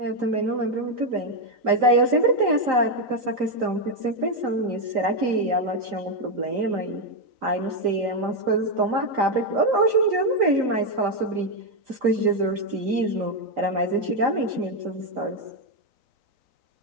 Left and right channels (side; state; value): left; late; 3.9 ms